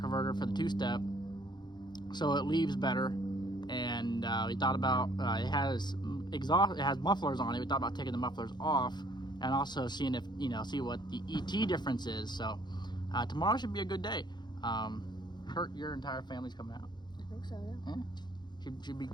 for the two-step, so it leaves better. And we thought about it has mufflers on it. We thought about taking the mufflers off and also seeing if see what the ET difference is. So tomorrow should be a good day. Your entire family's coming out. I think so, yeah. Yeah, should be a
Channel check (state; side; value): late; right; 0.21 ms